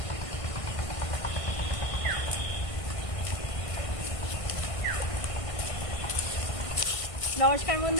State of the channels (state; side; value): late; right; 1.5 ms